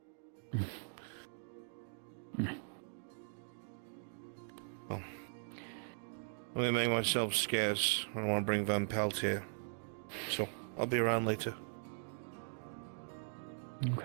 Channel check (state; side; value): silent; left; digital silence